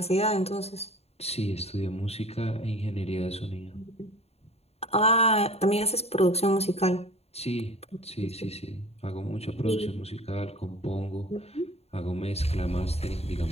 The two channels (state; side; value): late; right; 0.30 ms